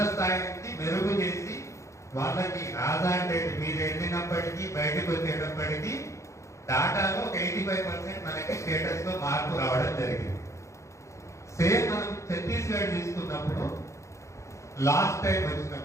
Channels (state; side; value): late; right; 0.14 ms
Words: స్థాయి నుంచి మెరుగు చేసి వాళ్ళకి ఆధార్ డేట్ మీరు వెళ్ళినప్పటికీ బయటకు వచ్చేటప్పటికీ డాటాలో ఒక 85% మనకి స్టేటస్ లో మార్పు రావడం జరిగింది. సేమ్ మనం ఛత్తీస్గఢ్ తీసుకున్నప్పుడు లాస్ట్ టైం